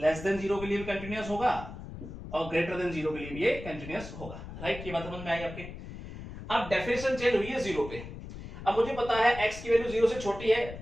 than 0 के लिए भी कंटिन्यूअस होगा और ग्रेटर देन 0 के लिए भी ये कंटिन्यूअस होगा। राइट, ये बात समझ में आई आपके। अब डेफिनेशन चेंज हुई है 0 पे। अब मुझे पता है x की वैल्यू 0 से छोटी है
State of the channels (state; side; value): noise; left; rumble, 11 dB below the sound